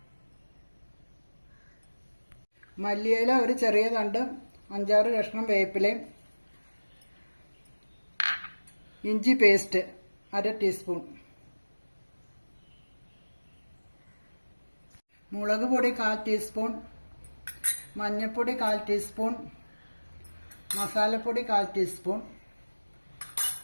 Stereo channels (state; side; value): inverted; both; correlation -1.00